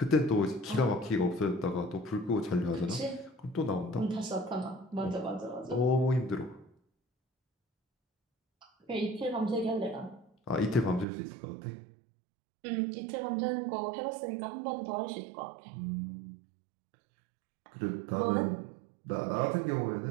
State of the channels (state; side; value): drops out; left; at 11.1 s